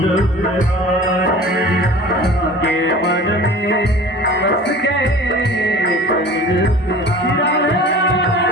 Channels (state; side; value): normal; both; correlation 0.42